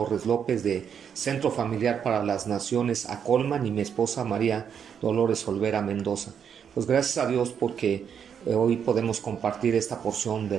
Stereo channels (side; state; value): left; quieter; 7.7 dB